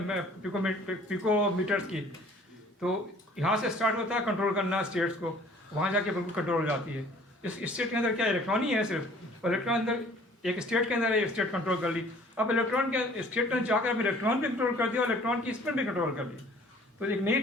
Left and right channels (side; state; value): both; normal; correlation 0.53